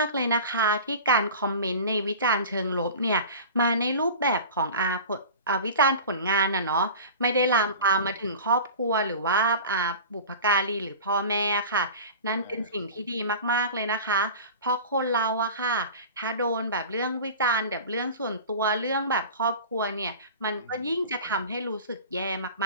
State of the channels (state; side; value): inverted; both; correlation -0.37